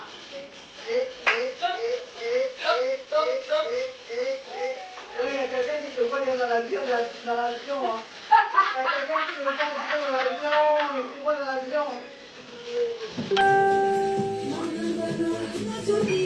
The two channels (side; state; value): both; identical; correlation 1.00